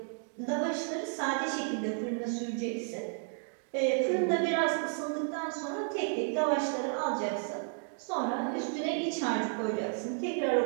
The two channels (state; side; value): silent; left; 56 dB below the other